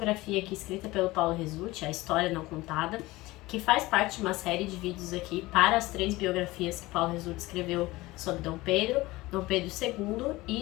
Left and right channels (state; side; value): quieter; right; 19.8 dB